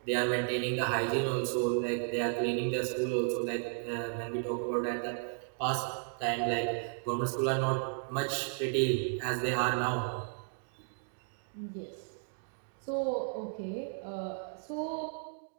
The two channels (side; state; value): left; silent; 55 dB below the other